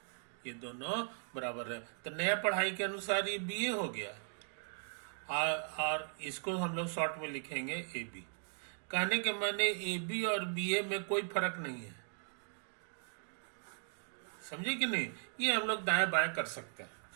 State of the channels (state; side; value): silent; left; 52 dB below the other